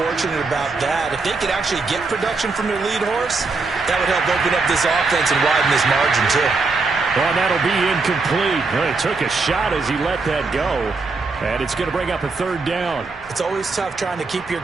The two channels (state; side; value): quieter; left; 4.0 dB